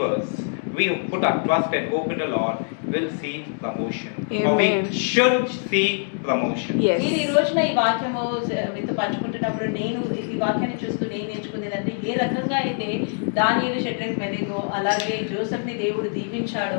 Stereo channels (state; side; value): silent; right; 63 dB below the other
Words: we who put our trust and hope in the Lord, will see promotion. Or we Amen. should see promotion. Yes. నేను ఈ రోజున ఈ వాక్యము మీతో పంచుకుంటున్నప్పుడు నేను ఈ వాక్యాన్ని చూస్తూ నేను నేర్చుకునేదంటే, ఏ రకంగా అయితే దానియేలు, షడ్రక్, మెనెగో అలాగే జోసెఫ్ని దేవుడు